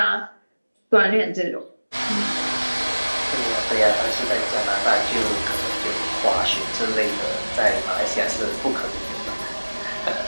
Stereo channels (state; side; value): inverted; both; correlation -1.00